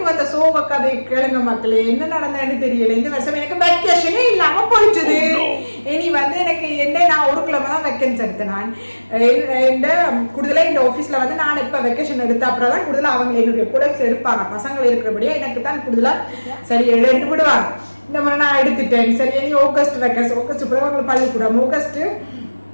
வந்த சோக கதை கேளுங்க மக்களே, என்ன நடந்ததுன்னு தெரியல. இந்த வருஷம் எனக்கு வெக்கேஷனே இல்லாம போயிட்டுது. இனி வந்து எனக்கு என்ன நான் ஒரு கிழமை தான் வெக்கேஷன் எடுத்தேன். நான் இந்த கூடுதலாக இந்த ஆஃபீஸ்ல வந்து நான் இப்போ வெக்கேஷன் எடுத்த அப்புறம் தான் கூடுதலாக அவங்க என்னுடைய ப்ரொடக்ட்ஸ் எடுப்பாங்க. பசங்கள் இருக்கிறபடியா எனக்கு தான் கூடுதலாக சரி எடுத்து விடுவாங்க. இந்த மாதிரி நான் எடுத்துட்டேன். சரி இனி ஆகஸ்ட் வெக்கேஷன், ஆகஸ்ட் பிறகு அவங்களுக்கு பள்ளிக்கூடம். ஆகஸ்ட்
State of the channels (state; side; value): inverted; both; correlation -1.00